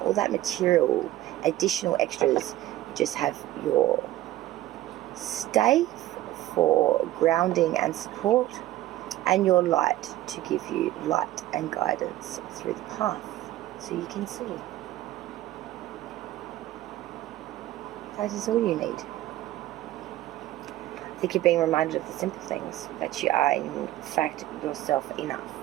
all that material, additional extras. You just have your stave for grounding and support, and your light to give you light and guidance through the path so you can see. That is all you need. I think you're being reminded of the simple things, that you are in fact yourself enough.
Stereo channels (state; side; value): quieter; left; 14.9 dB